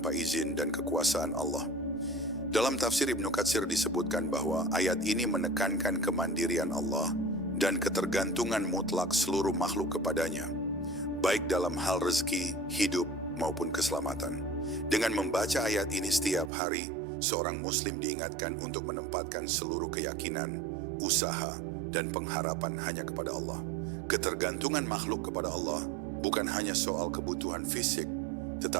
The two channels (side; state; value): left; drops out; at 16.5 s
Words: izin dan kekuasaan Allah. Dalam tafsir Ibnu Katsir disebutkan bahwa ayat ini menekankan kemandirian Allah dan ketergantungan mutlak seluruh makhluk kepadanya, baik dalam hal rezeki, hidup, maupun keselamatan. Dengan membaca ayat ini setiap hari, seorang muslim diingatkan untuk menempatkan seluruh keyakinan, usaha, dan pengharapan hanya kepada Allah. Ketergantungan makhluk kepada Allah bukan hanya soal kebutuhan fisik,